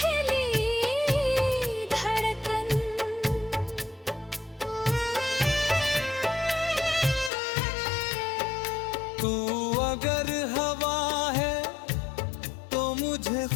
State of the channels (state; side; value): drops out; right; at 7.3 s